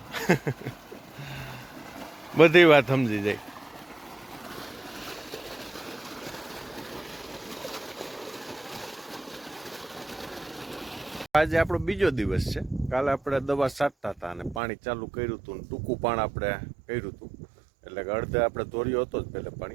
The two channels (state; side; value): drops out; left; at 14.6 s